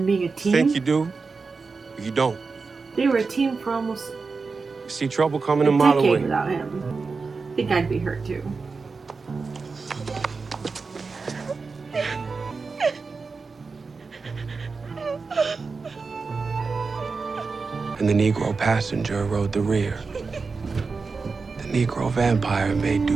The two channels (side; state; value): left; quieter; 4.5 dB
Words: being a team. Think you do? You don't. They were a team for almost See trouble coming a a mile away. decade without him. I think I'd be hurt too. And the Negro passenger rode the rear. The Negro vampire made